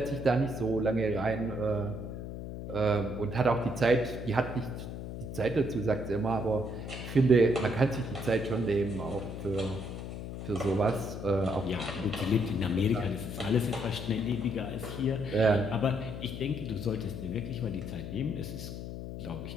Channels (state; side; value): noise; left; hum, 7 dB below the sound